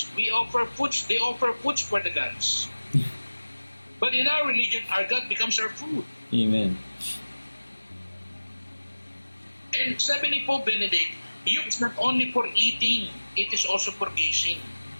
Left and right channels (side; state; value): both; inverted; correlation -1.00